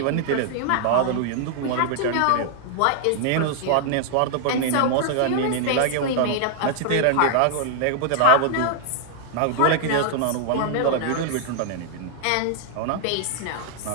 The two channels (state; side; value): different; both; correlation -0.01